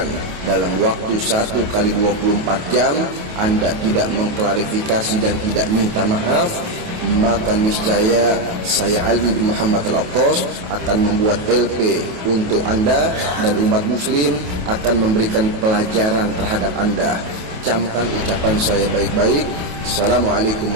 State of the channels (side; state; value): left; late; 28 ms